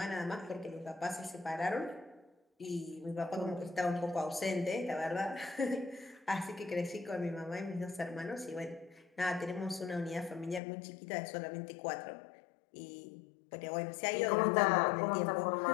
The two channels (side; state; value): right; drops out; at 10.6 s